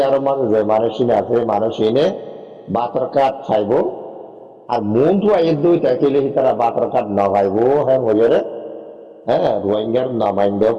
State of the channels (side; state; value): both; identical; correlation 1.00